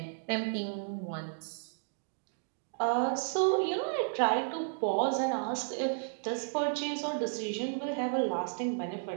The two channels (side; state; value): left; silent; digital silence